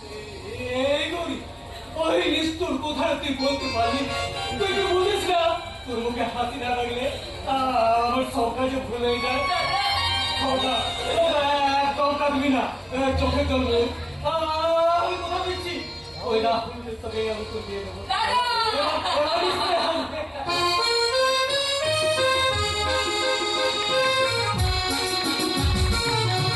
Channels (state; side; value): identical; both; correlation 1.00